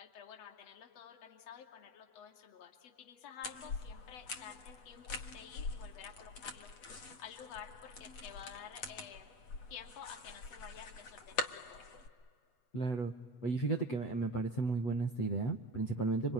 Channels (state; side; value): late; right; 8.1 ms